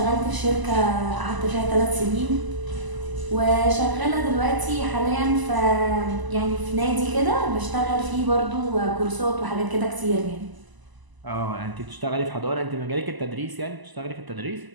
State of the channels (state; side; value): late; left; 1.0 ms